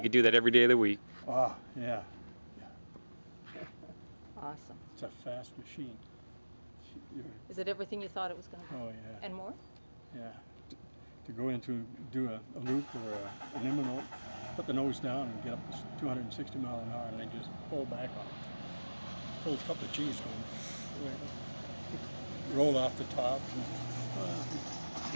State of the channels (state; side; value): inverted; both; correlation -1.00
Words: could do that every day of the week. Oh, yeah. Awesome. It's a fast machine. Is it everything you thought it was going to be? Oh, yeah. And more? Yeah. To go into do a loop or an imminent, put the nose down and get up to 260 miles an hour and then just pull back on it. Pull a couple of G's going. Roll off the top.